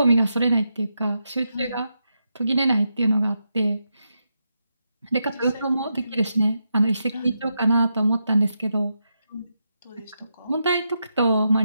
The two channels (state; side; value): inverted; both; correlation -0.85